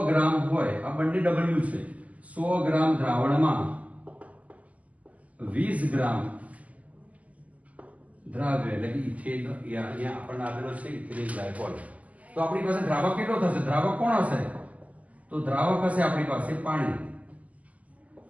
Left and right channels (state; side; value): late; left; 0.073 ms